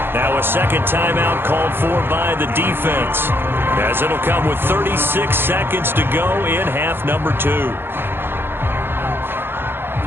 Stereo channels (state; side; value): late; left; 0.10 ms